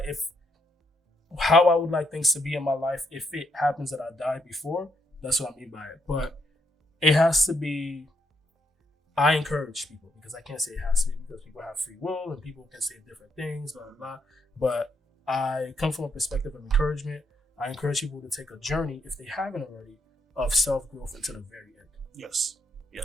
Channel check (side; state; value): both; normal; correlation 0.76